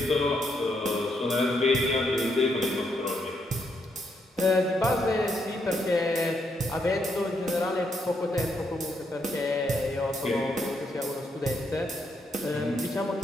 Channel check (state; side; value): normal; both; correlation 0.77